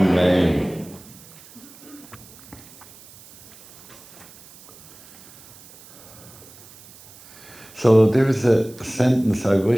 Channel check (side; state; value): right; noise; hiss, 22 dB below the sound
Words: So there's a sentence, I